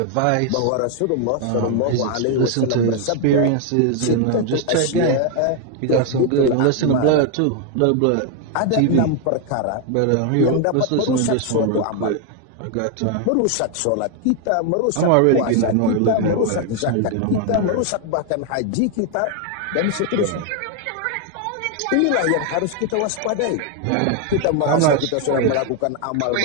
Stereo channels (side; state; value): both; different; correlation 0.01